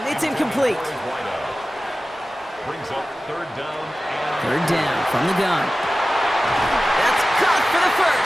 It's incomplete. Brings up 3rd down. 3rd down from the gun. That's caught for the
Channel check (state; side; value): normal; both; correlation 0.96